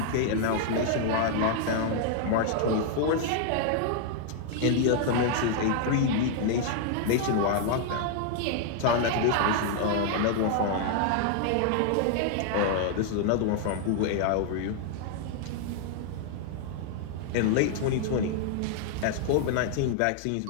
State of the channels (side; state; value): both; different; correlation 0.00